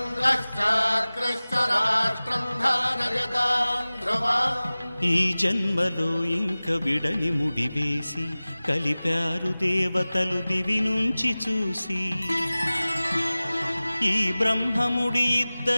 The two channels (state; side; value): inverted; both; correlation -0.98